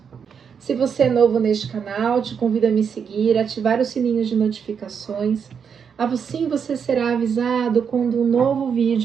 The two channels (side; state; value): left; quieter; 6.9 dB